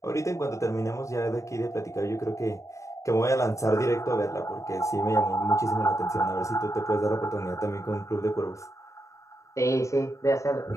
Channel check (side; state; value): right; late; 0.15 ms